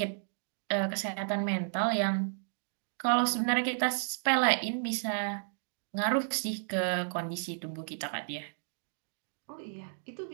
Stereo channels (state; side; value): silent; left; digital silence